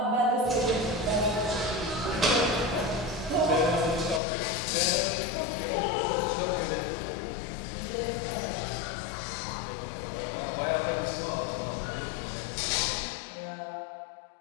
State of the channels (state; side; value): drops out; right; at 4.2 s